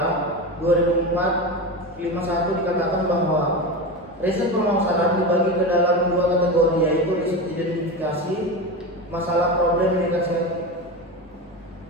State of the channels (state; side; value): normal; both; correlation 0.22